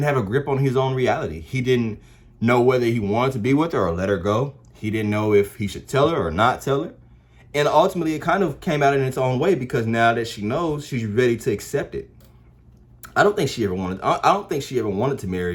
have a grip on his own reality. He didn't know whether he wanted to be with her or let her go. He didn't know if he should tell her or not tell her. And ultimately, it kind of came out in its own way, because now that she knows, she's ready to accept it. I don't think she ever wanted to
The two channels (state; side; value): identical; both; correlation 1.00